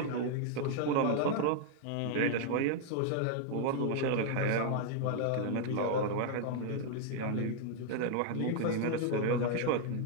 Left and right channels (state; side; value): different; both; correlation 0.00